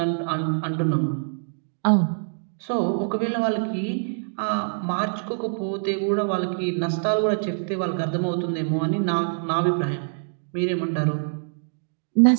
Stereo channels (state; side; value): silent; left; digital silence